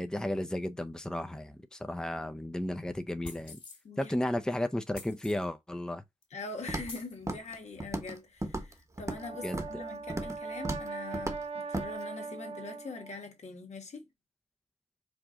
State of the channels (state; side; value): normal; both; correlation 0.84